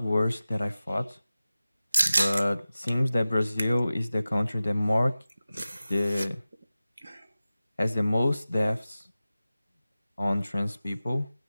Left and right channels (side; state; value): both; inverted; correlation -0.96